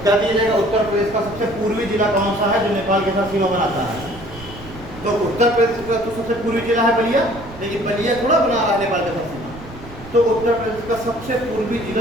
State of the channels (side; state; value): right; noise; rumble, 16 dB below the sound